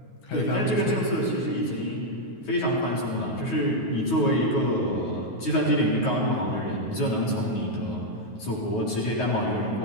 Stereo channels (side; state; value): right; late; 9.3 ms